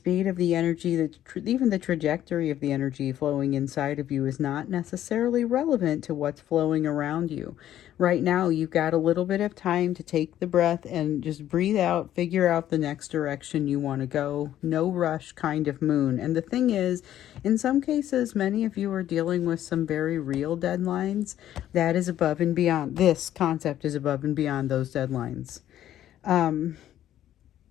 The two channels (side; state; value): right; quieter; 12.0 dB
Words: of the energy, even the trajectory of the energy flowing inside of you is not necessarily relevant to what's flowing around you. Right now, you've got a little bit of time to take the breath and just breathe out, figure out the next direction you want to go. No rush kind of moon. And the thing is, in some cases, many of you are dealing with some very real deadlines. That is above and beyond. This concept is above and beyond those deadlines.